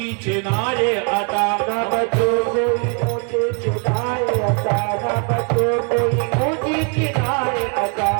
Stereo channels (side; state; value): left; quieter; 36.9 dB